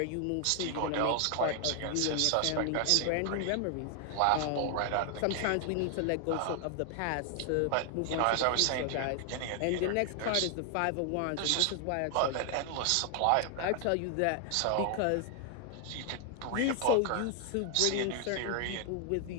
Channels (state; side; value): different; both; correlation 0.00